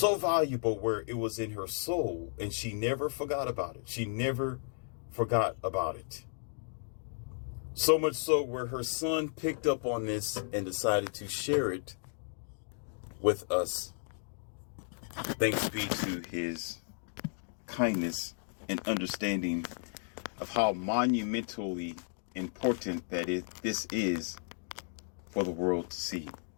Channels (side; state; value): right; silent; digital silence